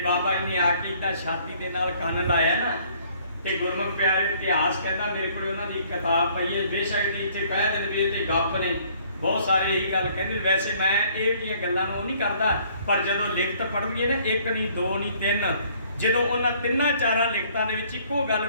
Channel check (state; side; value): inverted; both; correlation -0.60